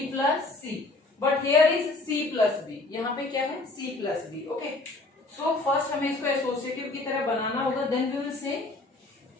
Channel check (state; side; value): quieter; right; 3.2 dB